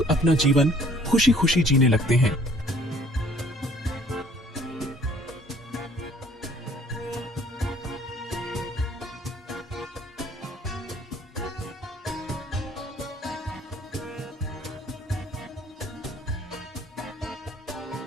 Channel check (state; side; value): normal; both; correlation 0.57